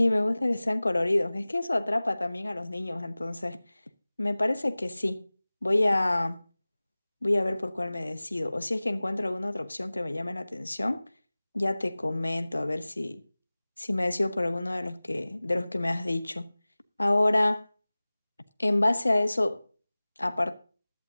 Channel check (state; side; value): inverted; both; correlation -0.99